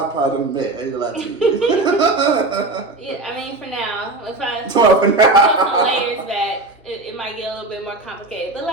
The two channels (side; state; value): left; quieter; 3.1 dB